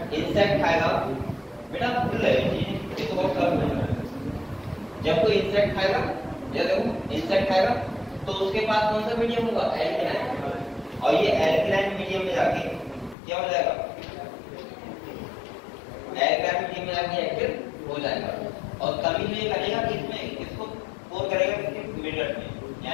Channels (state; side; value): drops out; right; at 13.2 s